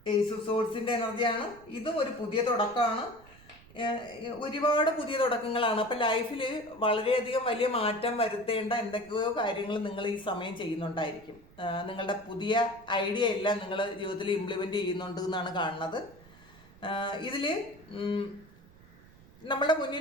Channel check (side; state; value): right; noise; rumble, 24 dB below the sound